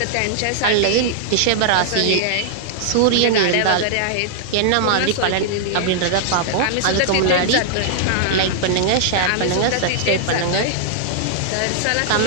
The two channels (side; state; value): both; different; correlation -0.01